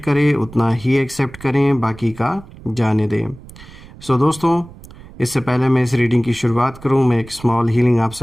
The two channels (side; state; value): right; noise; rumble, 19 dB below the sound